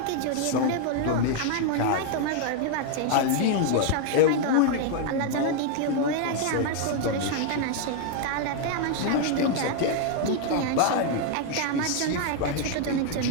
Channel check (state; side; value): different; both; correlation 0.00